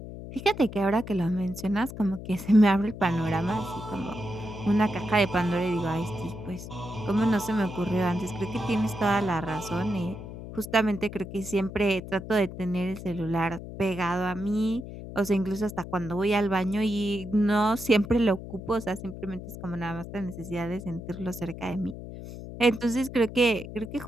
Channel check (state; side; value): noise; left; hum, 11 dB below the sound